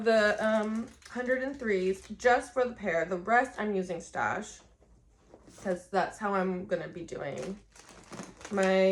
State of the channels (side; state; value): both; identical; correlation 1.00